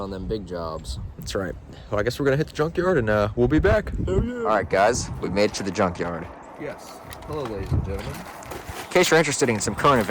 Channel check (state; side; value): identical; both; correlation 1.00